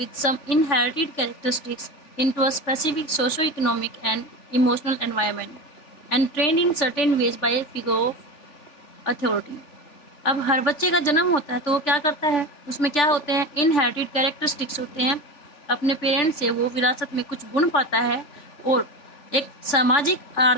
some inherited characteristics into a specific socio-economic and emotional environment and trained in certain ways by a figure of authority. अब हर बच्चे का जन्म होता है तो वो क्या करता है, उसमें क्या होते हैं, इनहेरिटेड कैरेक्टरिस्टिक्स होते हैं। अपने पेरेंट्स से वो विरासत में कुछ गुण पाता है और एक सामाजिक,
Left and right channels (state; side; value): late; right; 3.4 ms